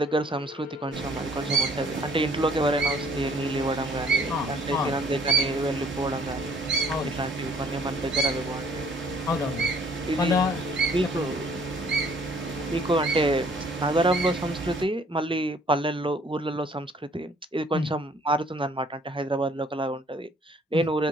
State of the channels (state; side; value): normal; both; correlation 0.59